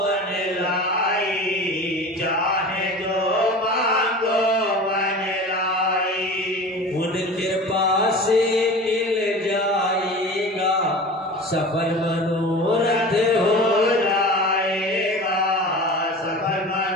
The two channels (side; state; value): both; normal; correlation 0.36